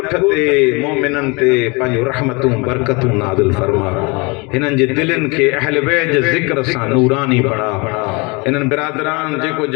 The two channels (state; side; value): quieter; right; 28.4 dB